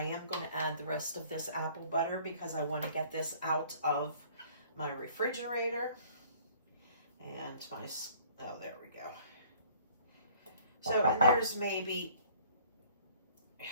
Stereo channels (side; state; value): both; inverted; correlation -0.55